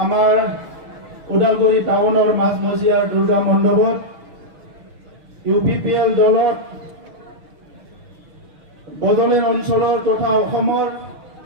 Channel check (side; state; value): left; late; 6.4 ms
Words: আমাৰ ওদালগুৰি টাউনৰ মাজমজিয়াৰ দুৰ্গা মণ্ডপত UPPL দলৰ বদলেৰ অঞ্চলৰ তথা অসমৰ